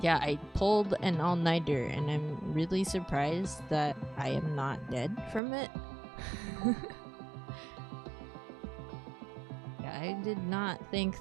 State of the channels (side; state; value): left; drops out; at 5.4 s